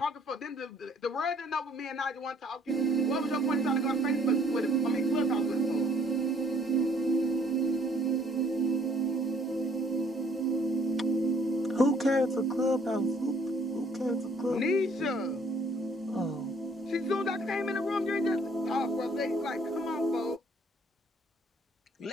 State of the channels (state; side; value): normal; both; correlation 0.61